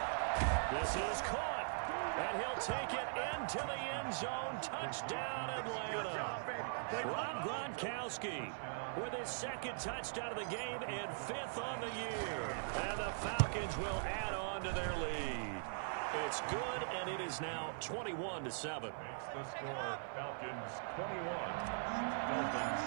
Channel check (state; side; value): silent; left; 50 dB below the other